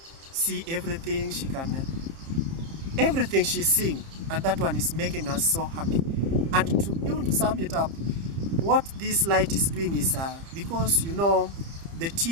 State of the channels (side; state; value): left; late; 30 ms